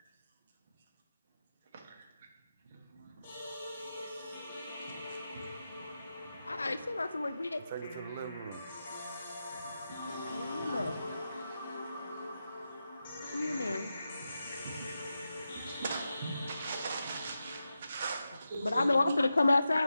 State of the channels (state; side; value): inverted; both; correlation -0.89